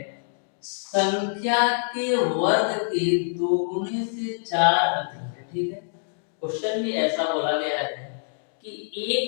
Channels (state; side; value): silent; right; digital silence